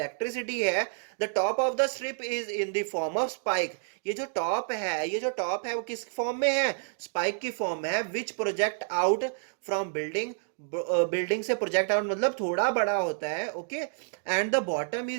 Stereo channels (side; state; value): left; silent; digital silence